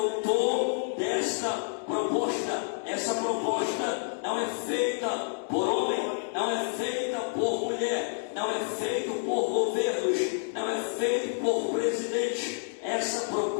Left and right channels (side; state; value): right; silent; digital silence